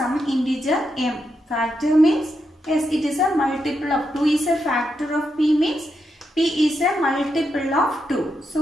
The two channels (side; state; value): both; normal; correlation 0.83